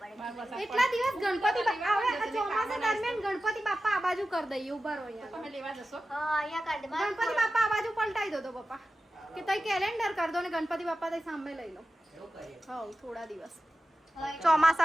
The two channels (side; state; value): both; normal; correlation 0.94